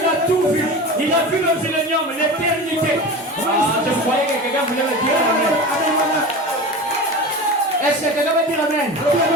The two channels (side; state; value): both; normal; correlation 0.30